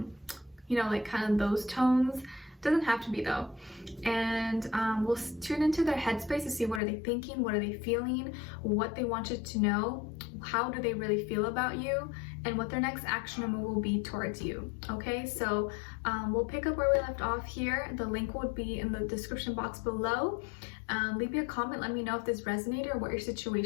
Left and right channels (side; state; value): right; drops out; at 6.8 s